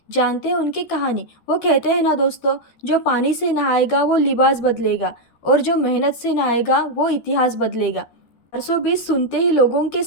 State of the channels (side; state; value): right; late; 13 ms